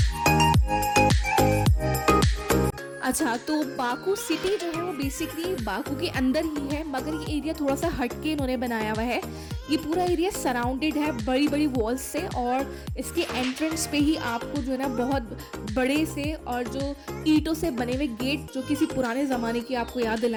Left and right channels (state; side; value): identical; both; correlation 1.00